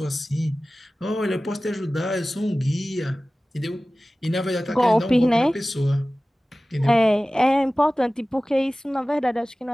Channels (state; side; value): normal; both; correlation 0.97